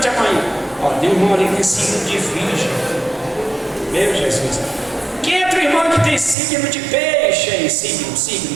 a mão aí. Ó, tem um irmão ali que tem signo de virgem. Meu Jesus. Quem é outro irmão que tem signo de peixe aí? Signo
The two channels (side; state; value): left; drops out; at 6.4 s